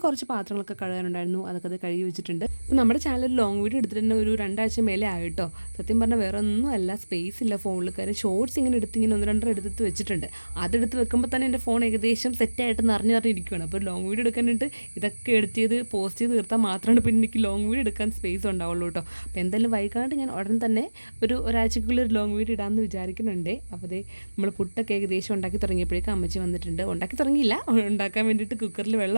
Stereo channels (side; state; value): both; inverted; correlation -1.00